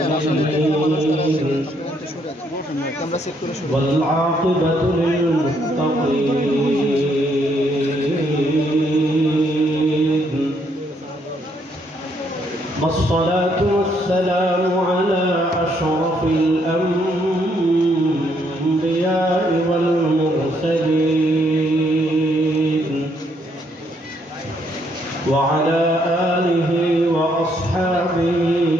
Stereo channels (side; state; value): both; normal; correlation 0.71